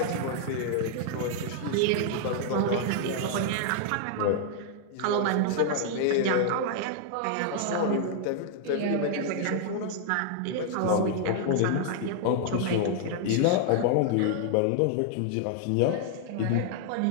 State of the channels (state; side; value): different; both; correlation 0.00